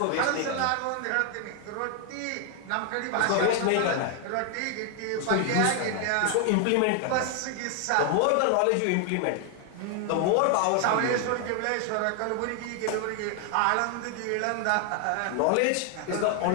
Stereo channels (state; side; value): different; both; correlation 0.00